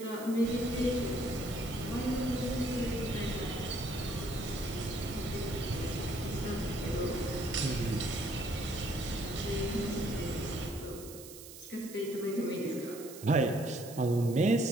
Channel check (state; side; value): noise; right; hiss, 15 dB below the sound